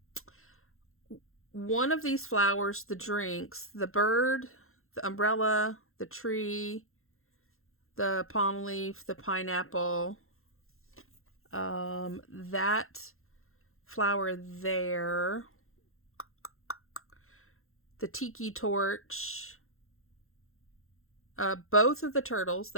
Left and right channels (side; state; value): right; late; 0.62 ms